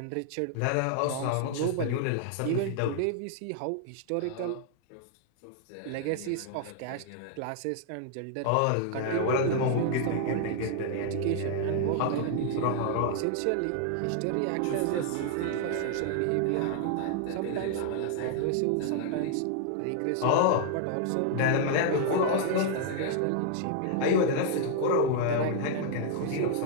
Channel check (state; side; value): different; both; correlation -0.01